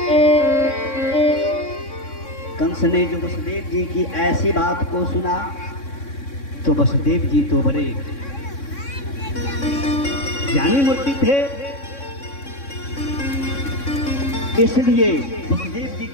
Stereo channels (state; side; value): late; right; 3.6 ms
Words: कंस ने जो वसुदेव जी की ऐसी बात को सुना तो वसुदेव जी तो बड़े ज्ञानी मूर्ति थे, इसलिए वसुदेव जी